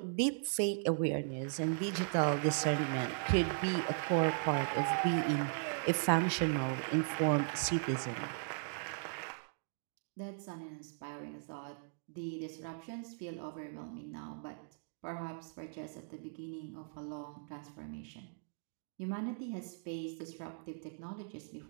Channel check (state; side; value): silent; left; digital silence